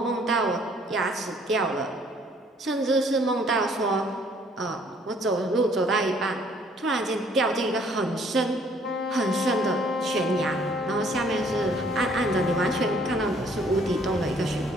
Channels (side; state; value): both; normal; correlation 0.61